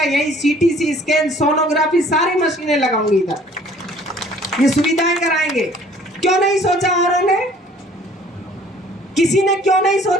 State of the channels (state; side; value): normal; both; correlation 0.54